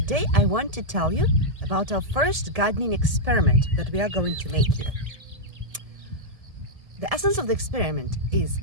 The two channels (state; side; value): late; left; 1.7 ms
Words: I want to tell you about our first gardening experiment that we are going to make here. The essence of the experiment is